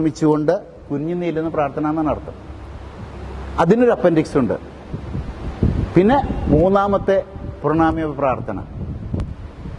കുഞ്ഞു നീളുന്ന പ്രാർത്ഥന എന്നാണ് അർത്ഥം. അതിനൊരു അപ്പൻഡിക്സ് ഉണ്ട്. പിന്നെ മൂന്നാമത്തെ പ്രണാമജപ പ്രാർത്ഥന,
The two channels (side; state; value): both; identical; correlation 1.00